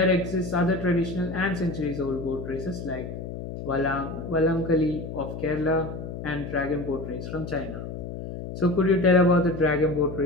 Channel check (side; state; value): left; noise; hum, 8 dB below the sound